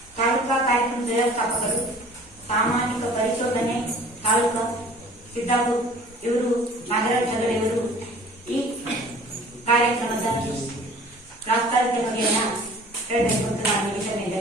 ತಾಲೂಕಾ ಕಾರ್ಯಕ್ರಮ ವ್ಯವಸ್ಥಾಪಕರು, ಸಾಮಾಜಿಕ ಪರಿಶೋಧನೆ ತಾಲೂಕಾ ಸಿದ್ದಾಪುರ ಇವರು ನಾಗರಾಜ್ ಹೆಗಡೆಯವರು ಈ ಕಾರ್ಯಕ್ರಮದ ಪ್ರಾಸ್ತಾವಿಕ ಬಗೆಯನ್ನ ಹೇಳಬೇಕು ಅಂತ ನಾನು ಈ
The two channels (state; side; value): normal; both; correlation 0.48